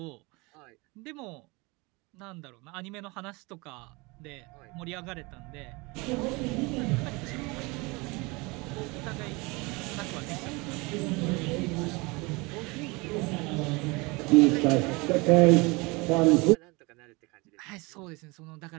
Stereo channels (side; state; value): left; quieter; 26.0 dB